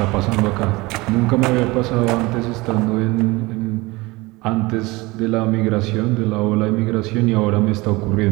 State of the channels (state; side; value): quieter; left; 22.4 dB